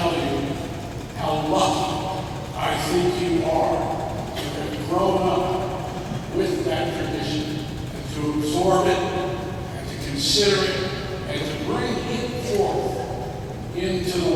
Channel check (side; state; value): both; identical; correlation 1.00